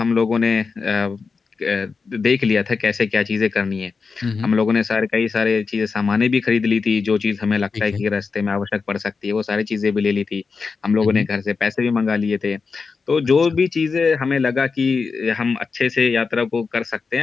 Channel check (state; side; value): quieter; right; 4.9 dB